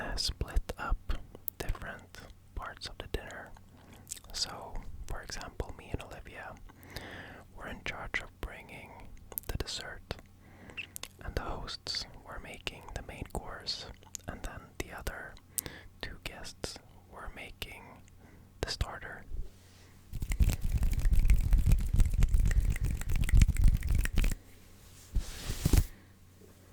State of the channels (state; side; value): identical; both; correlation 1.00